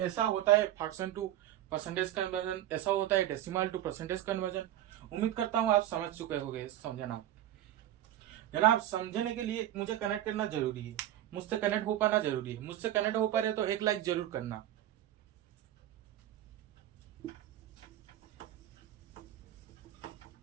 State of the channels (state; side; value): quieter; left; 12.8 dB